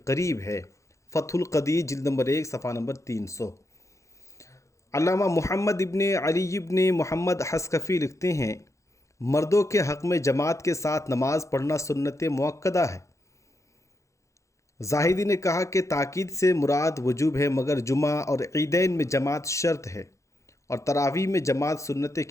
قریب ہے۔ فتح القدیر جلد نمبر 1 صفحہ نمبر 300۔ علامہ محمد ابن علی ابن محمد حسکفی لکھتے ہیں مردوں کے حق میں جماعت کے ساتھ نماز پڑھنا سنت مؤکدہ ہے۔ زاہدی نے کہا کہ تاکید سے مراد وجوب ہے، مگر جمعہ اور عیدین میں جماعت شرط ہے، اور تراویح میں جماعت سنت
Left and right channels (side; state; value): right; late; 0.15 ms